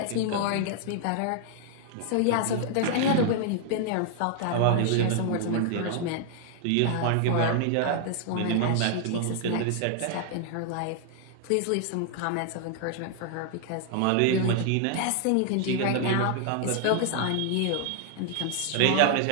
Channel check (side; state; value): both; different; correlation 0.00